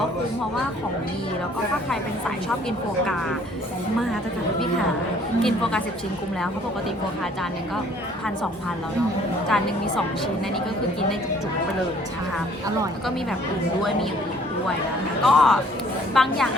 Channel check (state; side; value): normal; both; correlation 0.58